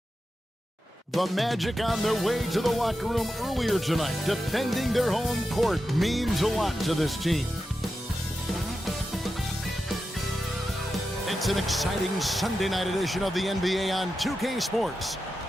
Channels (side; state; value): both; normal; correlation 0.90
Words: The Magic on their way to the locker room earlier tonight. Defending their home court means a lot to this team. It's an exciting Sunday night edition of the NBA on 2K Sports.